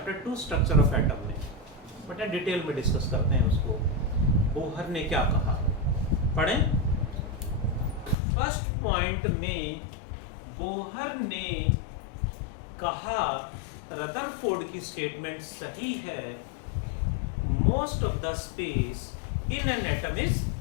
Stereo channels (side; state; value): right; drops out; at 8.2 s